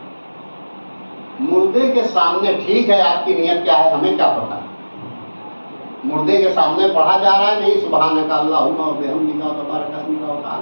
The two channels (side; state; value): both; inverted; correlation -1.00